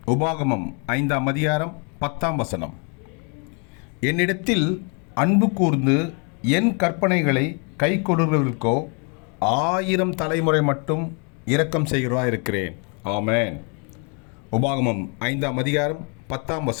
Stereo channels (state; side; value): quieter; right; 36.7 dB